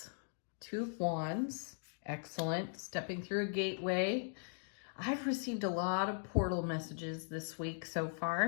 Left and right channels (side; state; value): right; silent; digital silence